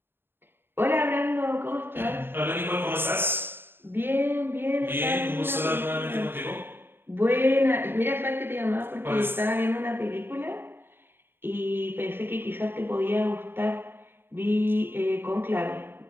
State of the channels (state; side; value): late; left; 0.10 ms